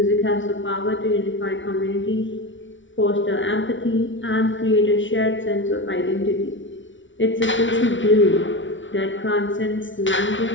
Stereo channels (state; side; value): late; right; 0.56 ms